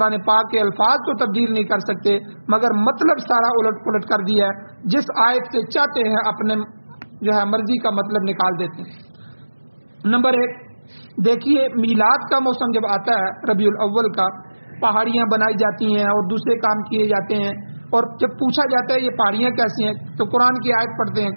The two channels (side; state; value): both; inverted; correlation -1.00